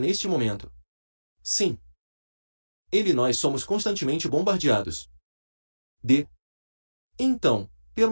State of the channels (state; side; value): inverted; both; correlation -1.00